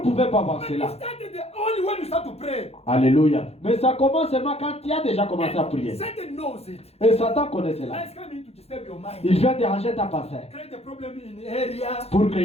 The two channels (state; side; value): late; right; 0.30 ms